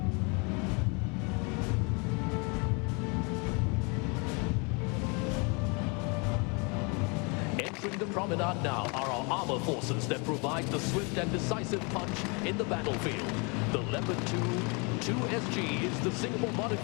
Entering the promenade now are our armor forces that provide the swift and decisive punch in the battlefield. The Leopard 2SG is the Singapore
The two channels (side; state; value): right; quieter; 32.0 dB